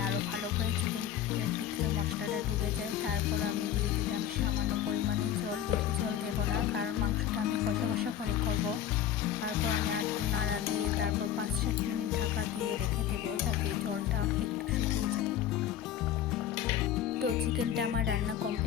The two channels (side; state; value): right; quieter; 10.3 dB